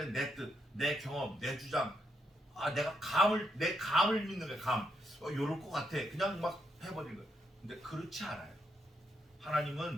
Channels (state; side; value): normal; both; correlation 0.79